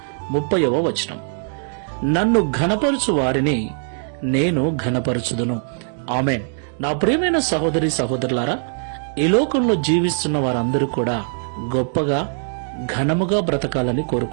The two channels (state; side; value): silent; left; 65 dB below the other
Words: 30వ వచనం. నన్ను ఘనపరచు వారిని నేను ఘనపరచుదును. ఆమేన్. నా ప్రియమైన సహోదరి సహోదరులారా, ఈ లోకంలో జీవిస్తున్న వారందరూ కూడా గొప్పగా ఘనముగా బ్రతకాలని